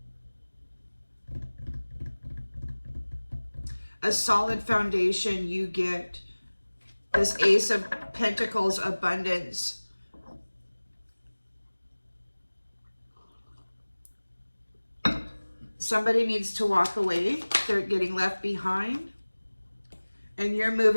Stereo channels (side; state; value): both; inverted; correlation -1.00